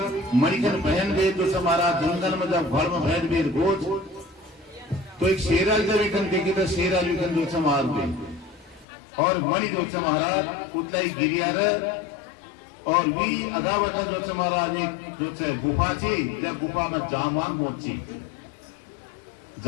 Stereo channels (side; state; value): right; drops out; at 8.8 s